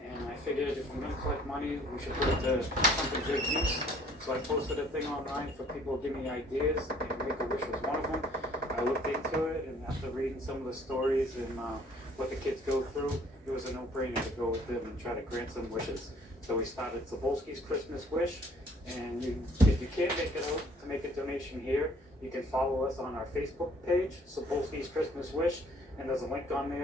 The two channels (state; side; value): normal; both; correlation 0.58